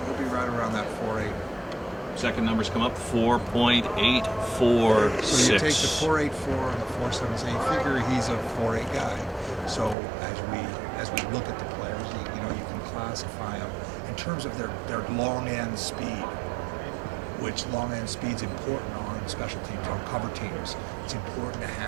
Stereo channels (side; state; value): left; drops out; at 10.0 s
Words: He'll be right around that 4.8. Second numbers come up, 4.846. So you take the 4.84 and the 4.7, so you figure he's a 4.8 guy. So as we look at the players, you know, you can classify them in terms of their long end speed, which long end speed's important on special teams, on cover teams. It's important to